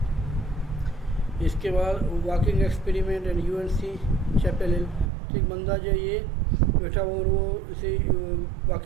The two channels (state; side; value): drops out; left; at 5.1 s